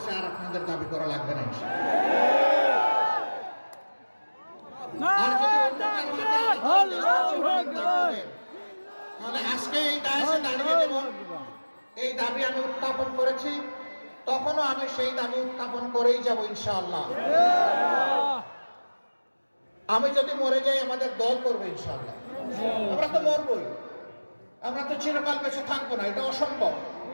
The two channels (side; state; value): both; inverted; correlation -1.00